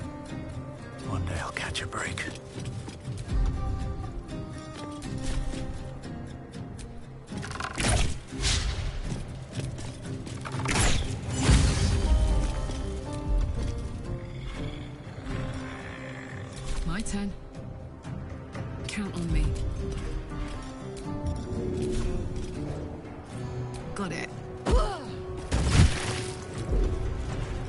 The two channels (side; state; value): both; identical; correlation 1.00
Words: One day I'll catch a break. My turn. Count on me. Got it.